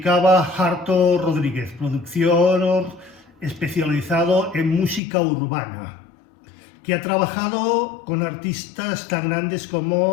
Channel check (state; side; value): drops out; right; at 5.0 s